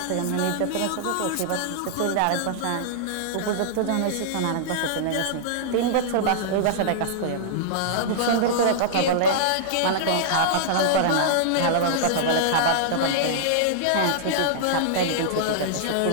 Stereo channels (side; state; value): both; different; correlation -0.02